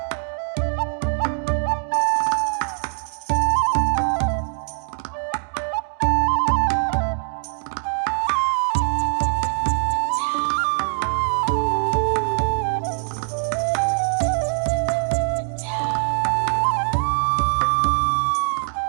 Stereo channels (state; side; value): silent; left; 60 dB below the other